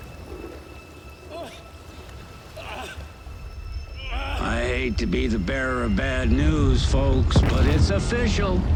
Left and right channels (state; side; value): identical; both; correlation 1.00